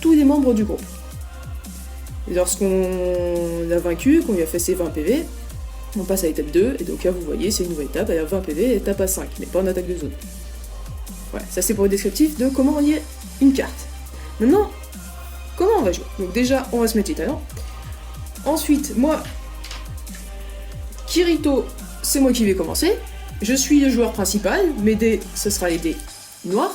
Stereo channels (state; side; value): identical; both; correlation 1.00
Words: les membres du groupe. Et lorsqu'on l'a vaincu, qu'on lui a fait ses 20 PV, on passe à l'étape 2, et donc là vous voyez, c'est une nouvelle étape, elle a 20 PV, et étape à 5, mais pas en attaque de zone. Voilà, ça c'est pour le descriptif de comment lier une carte. Maintenant, comment on va jouer? Donc déjà, on va se mettre les talents. Ensuite, moi, Kirito, c'est moi qui vais commencer. Je suis le joueur principal, mes dés, ce sera les dés